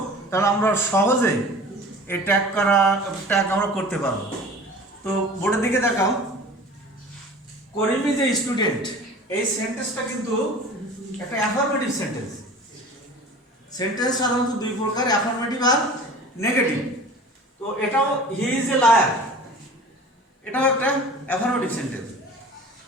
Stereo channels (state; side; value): normal; both; correlation 0.41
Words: তাহলে আমরা সহজে এই ট্যাগ আমরা করতে পারবো। তো বোর্ডের দিকে দেখাও। করিম ইজ এ স্টুডেন্ট, এই সেন্টেন্সটা কিন্তু একটা অ্যাফার্মেটিভ সেন্টেন্স। সেন্টেন্স সাধারণত দুই প্রকার, অ্যাফার্মেটিভ আর নেগেটিভ। তো এটাও হি ইজ এ লায়ার, এটাও একটা অ্যাফার্মেটিভ সেন্টেন্স।